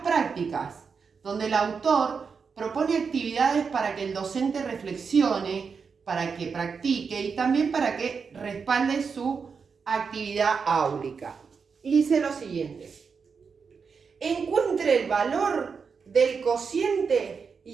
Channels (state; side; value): quieter; left; 5.6 dB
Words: prácticas, donde el autor propone actividades para que el docente reflexione, para que practique y también para que respalde su actividad áulica. Y dice lo siguiente: encuentre el valor del cociente